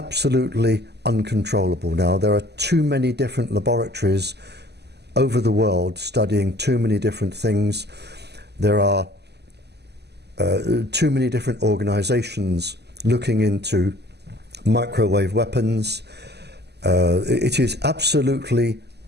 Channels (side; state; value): left; late; 0.49 ms